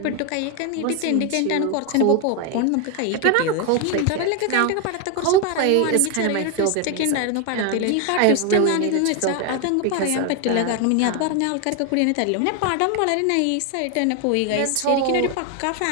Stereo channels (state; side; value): different; both; correlation 0.01